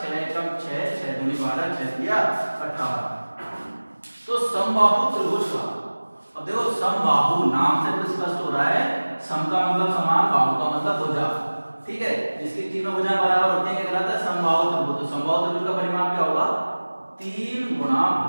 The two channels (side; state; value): both; inverted; correlation -1.00